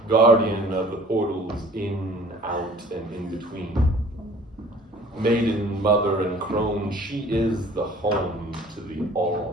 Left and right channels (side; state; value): both; normal; correlation 0.51